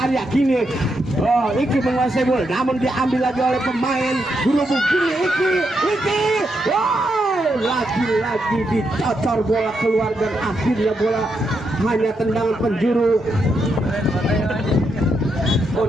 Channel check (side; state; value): both; normal; correlation 0.81